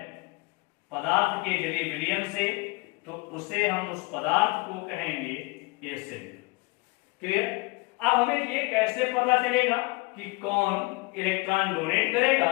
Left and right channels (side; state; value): right; quieter; 25.7 dB